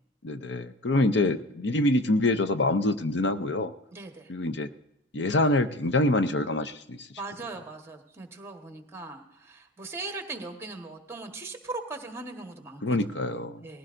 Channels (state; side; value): normal; both; correlation 0.36